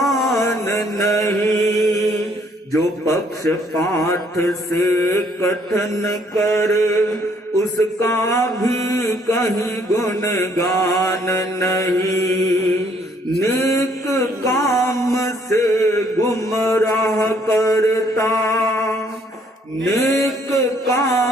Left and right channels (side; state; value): both; normal; correlation 0.65